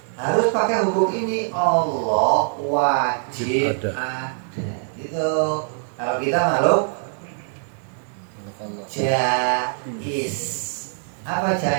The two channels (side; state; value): left; silent; digital silence